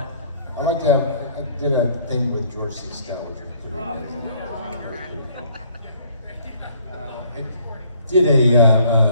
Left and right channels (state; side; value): inverted; both; correlation -0.60